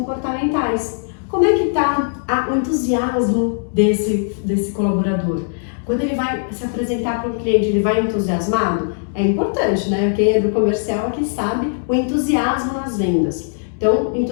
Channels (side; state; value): right; silent; digital silence